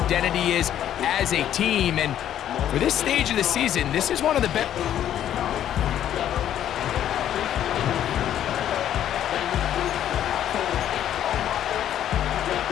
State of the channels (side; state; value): right; quieter; 10.9 dB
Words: is as a team. And for this stage of the season, this is one of the best.